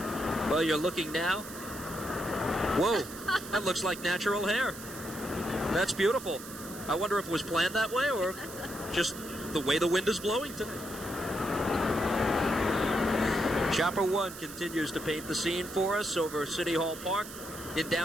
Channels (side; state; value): right; noise; hiss, 13 dB below the sound